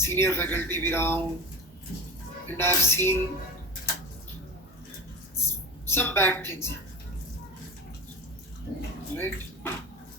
फैकल्टी भी रहा हूँ, and I have seen some bad things, right?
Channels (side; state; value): both; normal; correlation 0.29